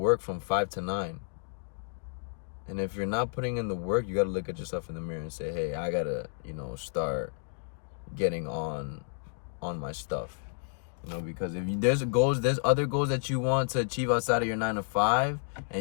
from 5 to 9? And if you're not putting in the work, you got to look at yourself in the mirror and say, hey, I got to, you know, start getting on my stuff. You know, because if there's other goals that you want to achieve outside of your 9 to 5,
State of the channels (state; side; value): silent; right; digital silence